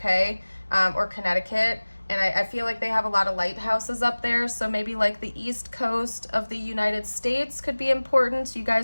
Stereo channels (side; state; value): both; inverted; correlation -1.00